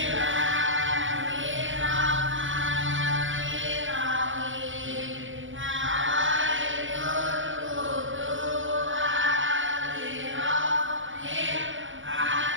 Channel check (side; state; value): left; late; 0.56 ms